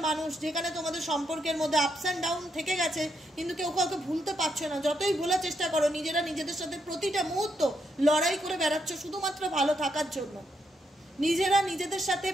মানুষ, যেখানে তোমাদের সম্পর্কের মধ্যে আপস অ্যান্ড ডাউন থেকে গেছে, কিন্তু কেউ কাউকে ভুলতে পারছো না, যতই ভোলার চেষ্টা করো নিজেরা নিজেদের সাথে প্রতিটা মুহূর্ত লড়াই করে বেড়াচ্ছ শুধুমাত্র ভালো থাকার জন্য, নিজেরা নিজেদের সাথে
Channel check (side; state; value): both; normal; correlation 0.78